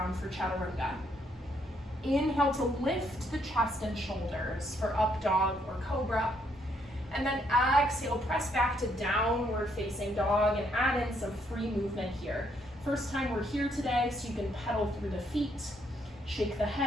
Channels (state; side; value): normal; both; correlation 0.72